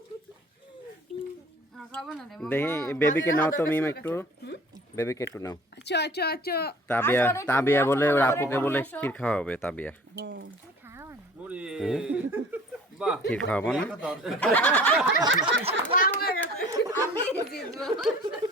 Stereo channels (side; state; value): both; normal; correlation 0.48